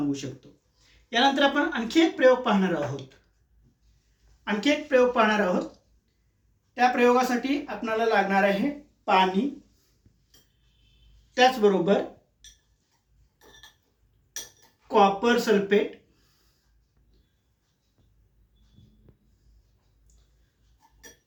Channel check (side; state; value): both; identical; correlation 1.00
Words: शकतो. यानंतर आपण आणखी एक प्रयोग पाहणार आहोत. त्या प्रयोगासाठी आपल्याला लागणार आहे पाणी, त्याचबरोबर कॉपर सल्फेट,